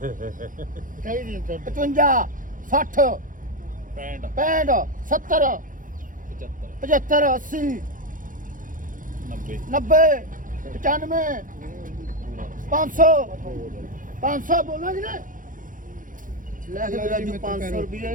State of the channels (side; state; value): left; late; 0.39 ms